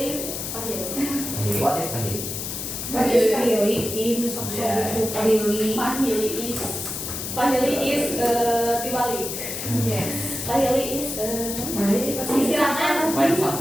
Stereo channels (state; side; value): noise; left; hiss, 5 dB below the sound